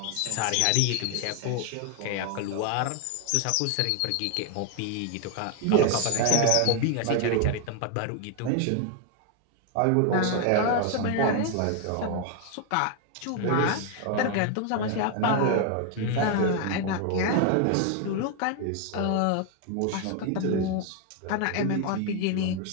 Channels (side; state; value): both; different; correlation 0.01